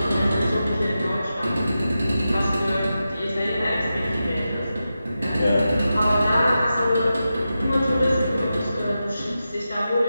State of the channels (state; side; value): inverted; both; correlation -0.91